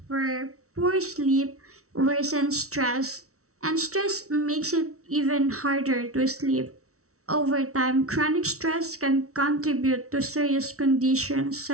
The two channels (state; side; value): late; left; 0.64 ms